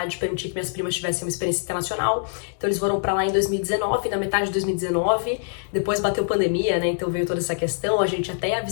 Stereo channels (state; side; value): silent; right; 63 dB below the other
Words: de permitir que minhas primas tivessem uma experiência internacional, então eles foram pra lá em 2019, na metade de 2019, depois bateu pandemia, né, então veio toda essa questão, a gente até ia